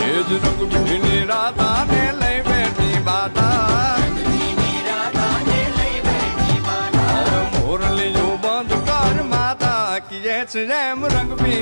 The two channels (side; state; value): both; inverted; correlation -1.00